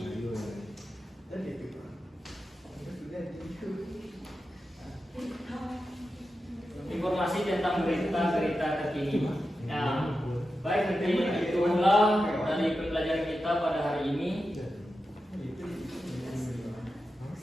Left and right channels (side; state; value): both; normal; correlation 0.91